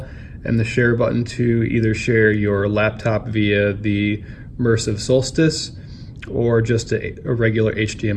and the share button to either share your laptop via the Immersive Solstice or just a regular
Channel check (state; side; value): identical; both; correlation 1.00